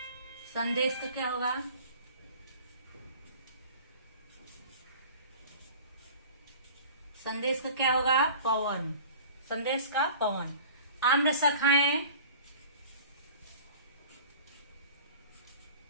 संदेश का क्या होगा? संदेश का क्या होगा? पवन। संदेश का पवन। आम्र शाखाएं,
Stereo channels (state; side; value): inverted; both; correlation -0.45